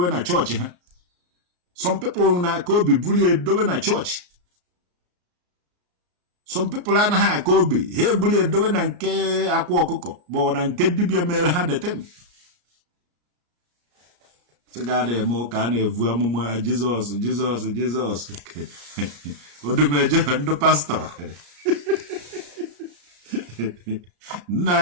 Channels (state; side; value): late; left; 34 ms